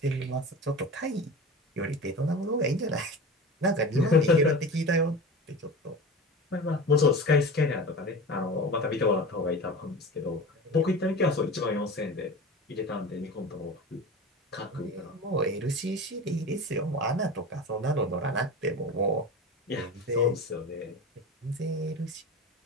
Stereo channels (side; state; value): both; normal; correlation 0.31